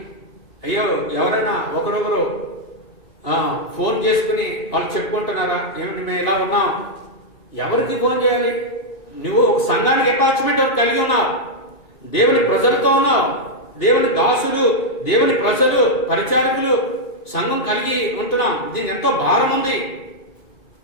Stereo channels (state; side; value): late; right; 2.3 ms